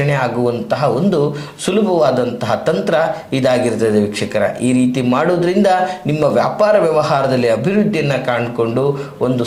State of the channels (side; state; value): both; identical; correlation 1.00